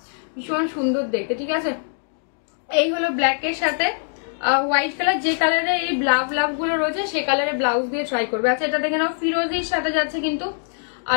ভীষণ সুন্দর দেখতে, ঠিক আছে। এই হলো ব্ল্যাক এর সাথে হোয়াইট কালার, যে কালারে এই লাভ লাভ গুলো রয়েছে সে কালারে ব্লাউজ দিয়ে ট্রাই করবে। আচ্ছা এটা দেখে নাও, ফিরোজির সাথে যাচ্ছে কিন্তু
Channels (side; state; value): right; silent; digital silence